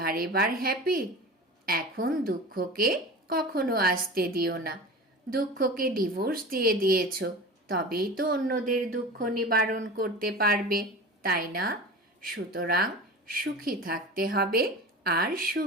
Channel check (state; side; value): normal; both; correlation 0.33